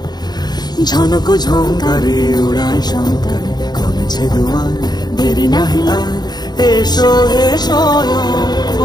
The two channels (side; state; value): right; late; 0.20 ms